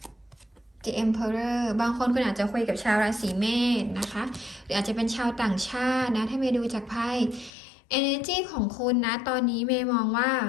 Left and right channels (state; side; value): drops out; right; at 7.5 s